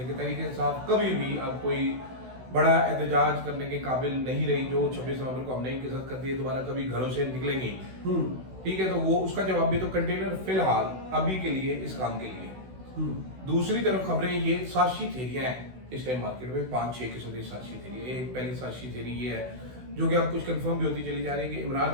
हैं कि तहरीक इंसाफ कभी भी अब कोई बड़ा एहतजाज करने के काबिल नहीं रही। जो 26 नवंबर को हमने इनके साथ कर दिए, दोबारा कभी घरों से निकलेंगे। ठीक है, तो वो उसका जवाब भी तो कंटेनर फिलहाल अभी के लिए इस काम के लिए। दूसरी तरफ खबरें ये साजिशी थेरियां हैं इस टाइम मार्केट में, 5-6 किस्म की साजिशी थेरी। एक पहली साजिशी थेरी ये है, जो कि अब कुछ कंफर्म भी होती चली जा रही है, कि इमरान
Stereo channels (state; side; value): late; left; 16 ms